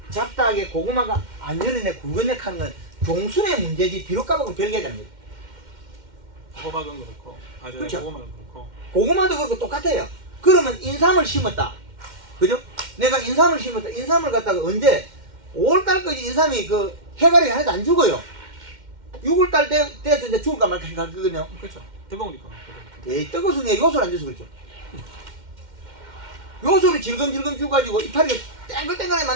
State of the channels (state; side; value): late; left; 2.1 ms